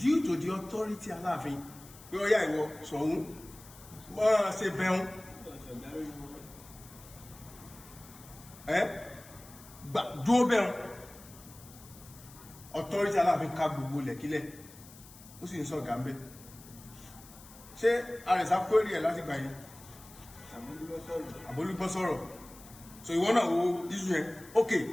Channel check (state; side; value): noise; left; hiss, 20 dB below the sound